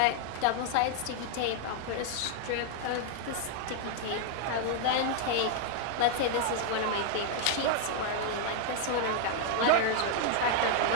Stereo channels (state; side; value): different; both; correlation 0.00